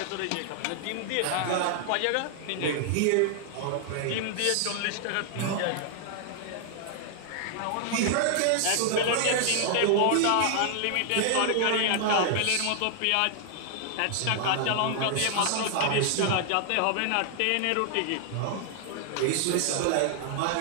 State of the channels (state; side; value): different; both; correlation 0.00